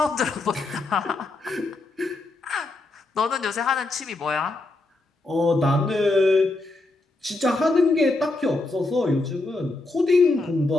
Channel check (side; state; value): right; quieter; 3.0 dB